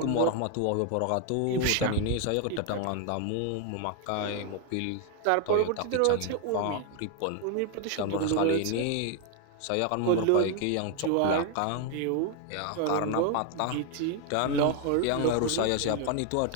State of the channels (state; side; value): different; both; correlation 0.00